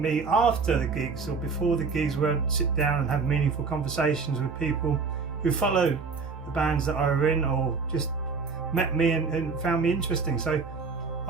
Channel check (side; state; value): left; quieter; 4.8 dB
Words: after the gigs or before the gigs, where I'd sit down and have meaningful conversations with people who follow the bands that I were in or just met me and found me interesting. So